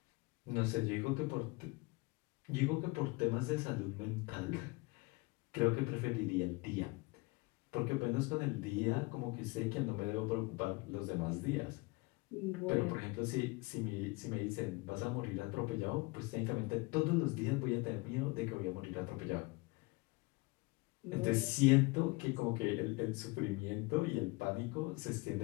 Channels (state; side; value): quieter; right; 25.5 dB